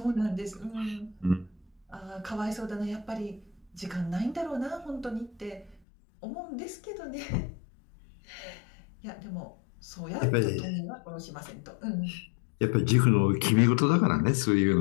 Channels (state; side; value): drops out; right; at 5.8 s